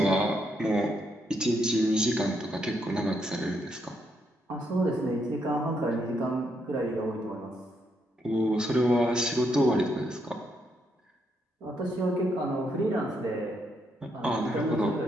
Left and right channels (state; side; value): normal; both; correlation 0.77